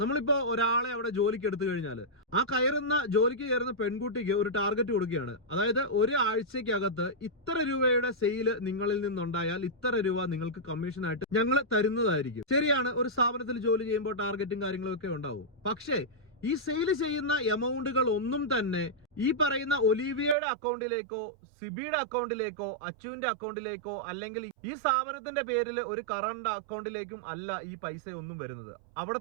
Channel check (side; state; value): left; drops out; at 20.4 s